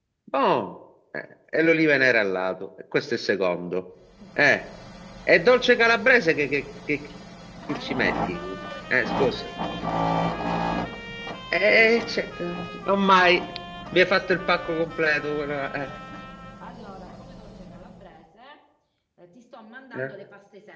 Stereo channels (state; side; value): identical; both; correlation 1.00